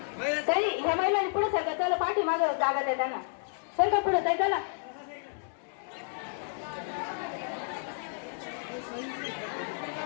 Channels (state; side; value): silent; right; 57 dB below the other